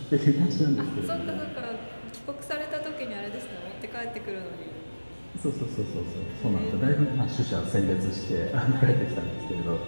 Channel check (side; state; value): both; inverted; correlation -1.00